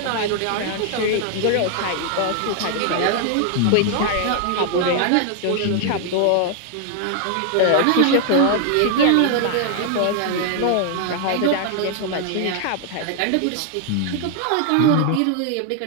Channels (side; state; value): both; different; correlation 0.00